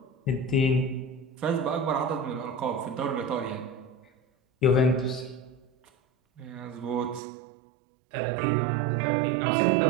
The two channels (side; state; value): left; drops out; at 7.2 s